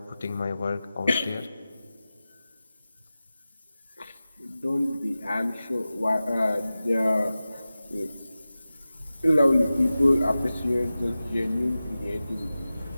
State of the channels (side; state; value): both; inverted; correlation -0.95